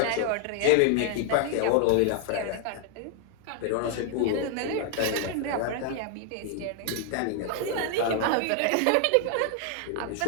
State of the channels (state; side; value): different; both; correlation 0.00